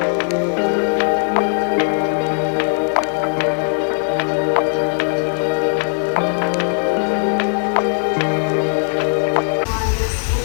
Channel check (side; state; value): right; silent; 67 dB below the other